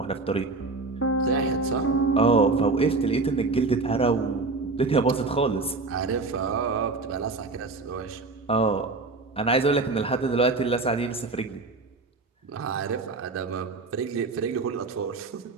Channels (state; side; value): quieter; left; 3.7 dB